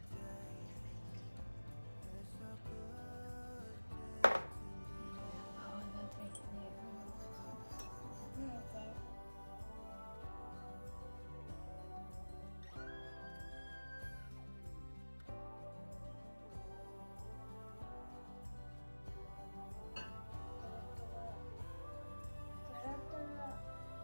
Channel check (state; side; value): inverted; both; correlation -1.00